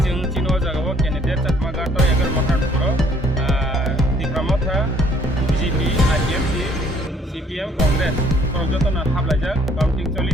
जों चिनो जागाव क्यान्डिडेट चाकमाघाट एगार माखानफोरो त्रिपुरा माथा बिजेपि आरडिएफसि सिपिएम कांग्रेस फोराव जतन हाबलायजा काउंटिं चलि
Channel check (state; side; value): normal; both; correlation 0.62